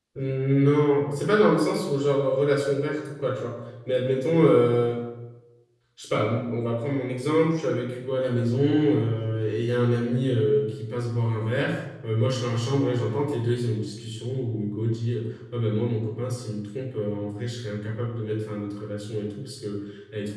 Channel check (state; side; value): identical; both; correlation 1.00